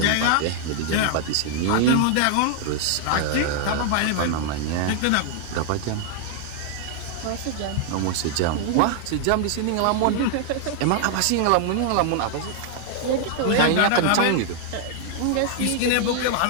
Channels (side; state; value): both; different; correlation 0.00